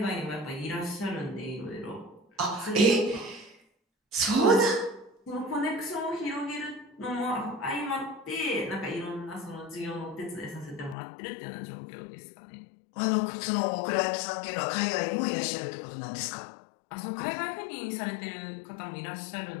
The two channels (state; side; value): drops out; right; at 11.0 s